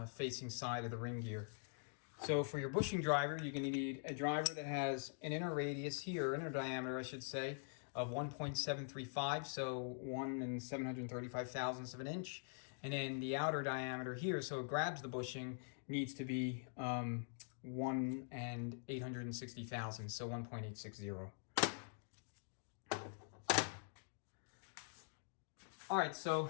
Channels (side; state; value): right; silent; digital silence